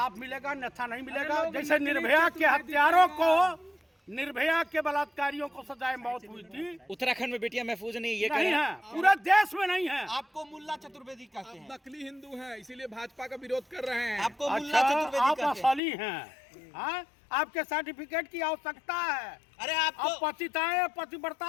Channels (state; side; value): drops out; right; at 15.8 s